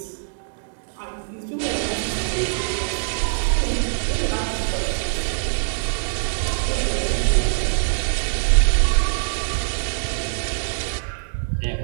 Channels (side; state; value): left; silent; digital silence